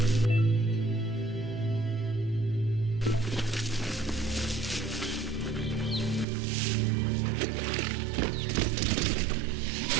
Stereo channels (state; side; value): drops out; left; at 6.2 s